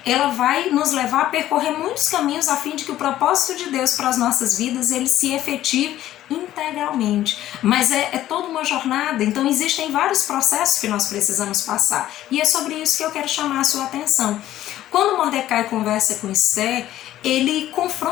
ela vai nos levar a percorrer muitos caminhos a fim de que o propósito de Deus para as nossas vidas, ele se efetive integralmente. Mas é toda uma jornada, então existem vários processos que nós precisamos passar. E é sobre isso que eu quero chamar a sua atenção. Quando Mordecai conversa com Esther, ele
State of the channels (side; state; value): right; quieter; 13.4 dB